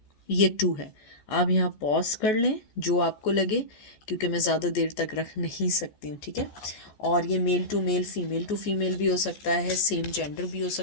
ये 2 है। आप यहाँ पॉज कर लें जो आपको लगे, क्योंकि मैं ज़्यादा देर तक रख नहीं सकती हूँ। ठीक है, और ये male to male, female to female भी हो सकता है, सेम जेंडर भी हो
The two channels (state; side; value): late; right; 14 ms